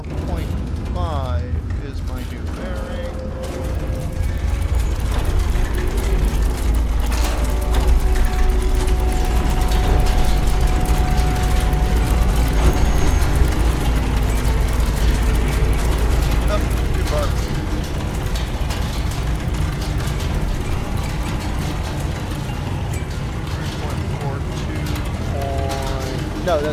is my new bearing. Oh, too far. No,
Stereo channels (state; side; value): identical; both; correlation 1.00